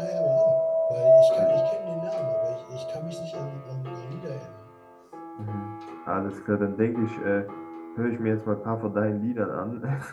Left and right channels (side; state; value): both; identical; correlation 1.00